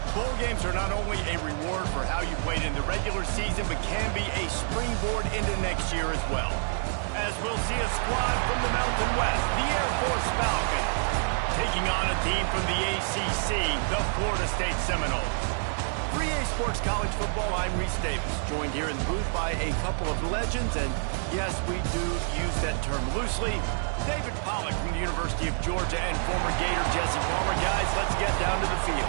Bowl games are not only a reward for how you played in the regular season, but can be a springboard into next year as well. As we'll see a squad from the Mountain West, the Air Force Falcons, taking on a team from the ACC, the Florida State Seminoles. For EA Sports College Football, I'm Reese Davis, joined here in the booth by a couple of legends, and yes, we do use that term loosely. David Pollack from the University of Georgia and former Gator Jesse Palmer. Guys, let's get down to the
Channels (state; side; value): silent; left; 59 dB below the other